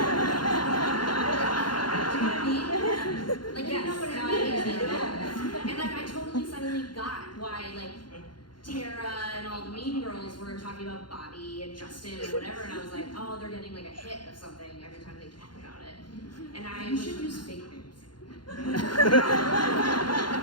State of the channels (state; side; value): late; right; 0.71 ms